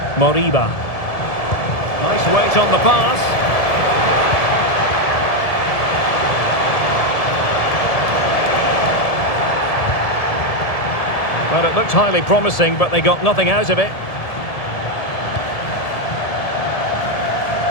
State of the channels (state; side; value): late; right; 1.7 ms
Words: Moriba. Nice weight on the pass. Well, it looked highly promising, but they got nothing out of it.